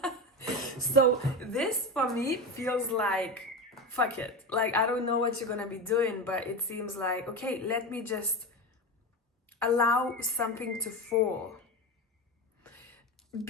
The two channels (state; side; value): normal; both; correlation 0.21